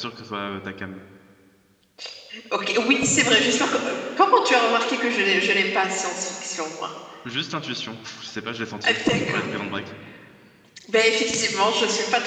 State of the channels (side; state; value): both; identical; correlation 1.00